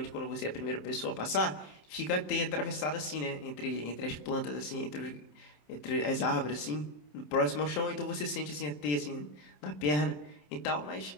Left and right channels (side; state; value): right; late; 27 ms